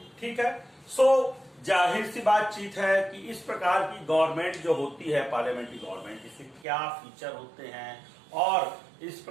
ठीक है। सो जाहिर सी बातचीत है कि इस प्रकार की गवर्नमेंट जो होती है पार्लियामेंट्री गवर्नमेंट, इसके क्या फीचर होते हैं और इस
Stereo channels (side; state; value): left; drops out; at 6.7 s